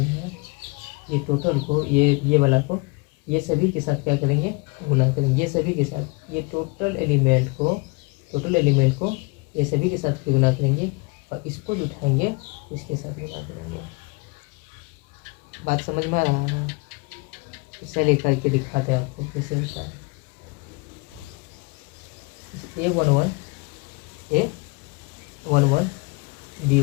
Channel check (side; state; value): right; quieter; 28.7 dB